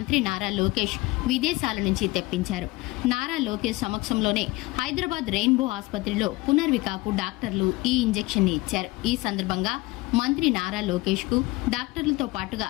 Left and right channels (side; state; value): right; quieter; 21.7 dB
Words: నారా లోకేష్ విదేశాల నుంచి తెప్పించారు. నారా లోకేష్ సమక్షంలోనే హైదరాబాద్ రెయిన్బో ఆసుపత్రిలో పునర్వికకు డాక్టర్లు ఈ ఇంజెక్షన్ ఇచ్చారు. ఈ సందర్భంగా మంత్రి నారా లోకేష్ కు డాక్టర్లతో పాటుగా